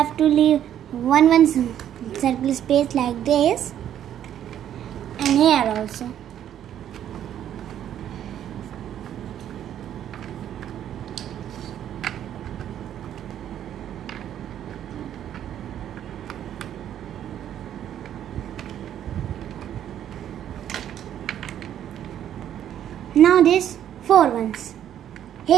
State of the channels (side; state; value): left; quieter; 10.5 dB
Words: to leave one circle space like this, and here also. Now this 4 ones